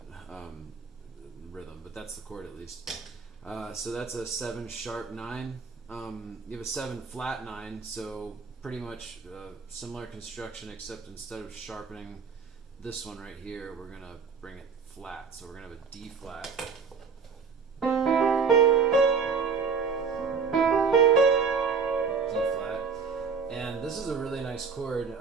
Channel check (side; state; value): left; quieter; 5.5 dB